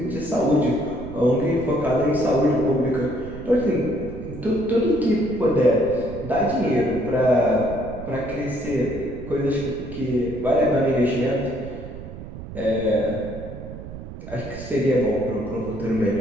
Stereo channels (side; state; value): right; noise; rumble, 12 dB below the sound